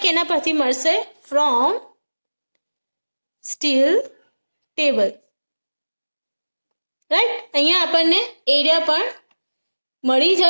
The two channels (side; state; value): both; inverted; correlation -1.00